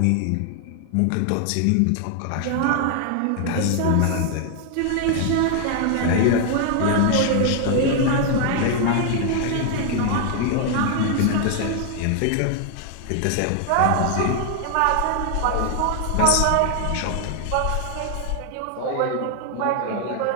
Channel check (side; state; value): both; different; correlation 0.00